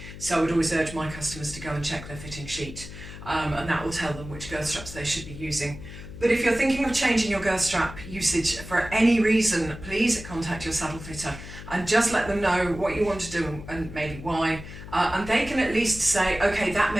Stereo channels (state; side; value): noise; left; hum, 13 dB below the sound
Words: So I would always urge my customers to go and check their fitting sheet, and that will tell them which girth straps they should be using. But if you're thinking of changing your girth strap usage for any reason, please contact your saddle fitter and just let them know what you want to do and maybe why. And they can at least say, okay, that